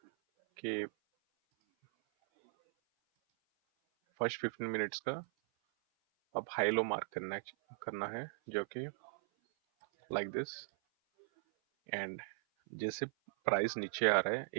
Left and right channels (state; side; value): silent; left; 52 dB below the other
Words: कि फर्स्ट 15 मिनट्स का अब हाई लो मार्क करना है जो कि लाइक दिस। एंड जैसे प्राइस नीचे आ रहा है